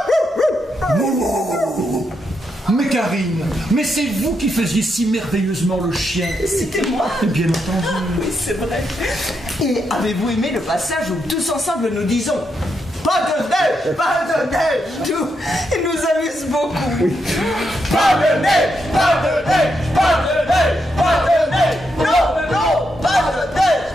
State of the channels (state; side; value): normal; both; correlation 0.82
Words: Mais Karine, mais c'est vous qui faisiez si merveilleusement le chien. C'était moi. Bien entendu. Oui, c'est vrai. Et avez-vous aimé le passage où tous ensemble nous disons pas de neige, pas de neige, tout. Il nous amuse beaucoup. Pas de neige, pas de neige, pas de neige, pas de neige. Non, non, pas de neige.